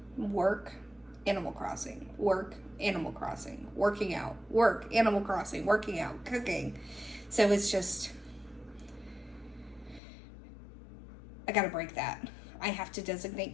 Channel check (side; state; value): right; drops out; at 10.0 s